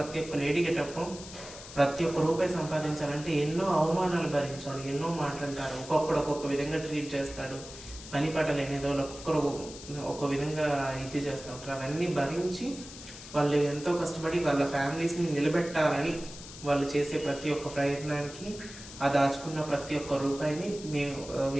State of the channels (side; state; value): left; noise; hiss, 14 dB below the sound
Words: ఒక్క లేడీ గెటప్ ప్రతి ఒక్క రూపాయి సంపాదించాలంటే ఎన్నో అవమానాలు భరించాలి, ఎన్నో మాట్లాడతారు, ఒక్కొక్క విధంగా ట్రీట్ చేస్తాడు. పని పాట లేనిదో ఒక్కొక్కరు ఒక విధంగా ఇది చేస్తూ ఉంటారు. అవన్నీ భరించి వాళ్ళు ఎంతో కష్టపడి వాళ్ళ ఫ్యామిలీస్ని నిలబెట్టాలని వాళ్ళు చేసే ప్రతి ఒక్క ప్రయత్నానికి ఆ దాచుకున్న ప్రతి ఒక్క రూపాయిని మేము